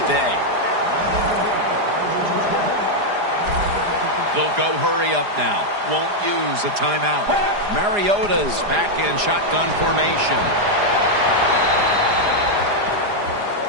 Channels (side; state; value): left; late; 4.9 ms